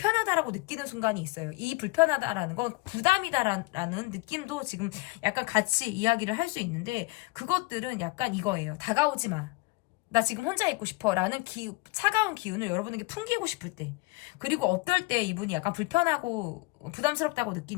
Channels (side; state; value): right; quieter; 24.7 dB